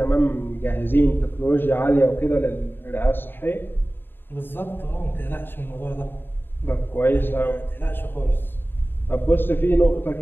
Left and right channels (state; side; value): late; right; 0.098 ms